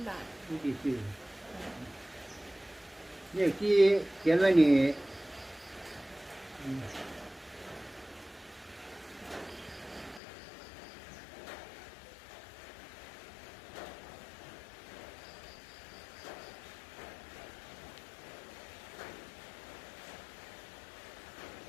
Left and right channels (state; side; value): drops out; right; at 10.2 s